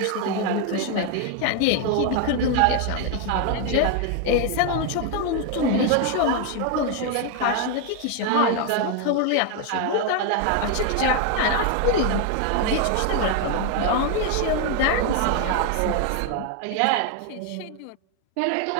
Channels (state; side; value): different; both; correlation 0.01